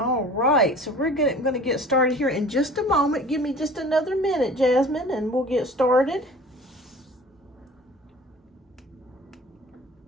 right, so we're going to get started here in just a moment. Give me just another minute, Jasmine, and we'll get started.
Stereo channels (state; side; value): normal; both; correlation 0.44